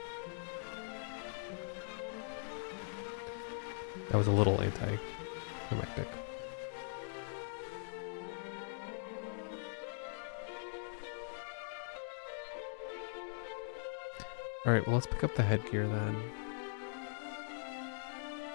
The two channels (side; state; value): right; silent; digital silence